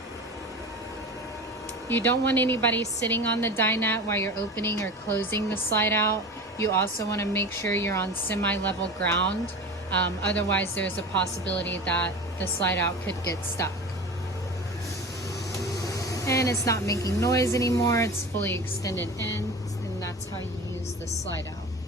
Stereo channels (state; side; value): normal; both; correlation 0.32